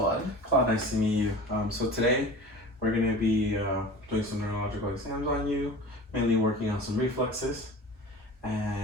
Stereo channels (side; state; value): both; normal; correlation 0.37